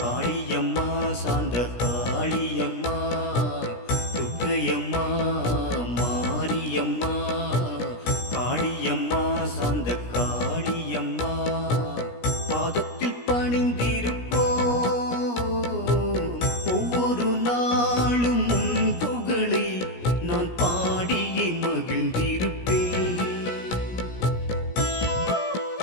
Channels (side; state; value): right; late; 17 ms